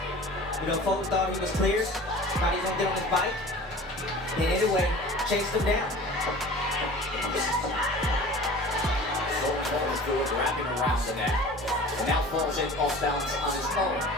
You know, Fulton thought he was clear. Thought he was gonna get on his bike. And Inoue chased him down. Fulton falls through it, wrapping around the neck. And now falls in off balance on his own.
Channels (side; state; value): both; normal; correlation 0.41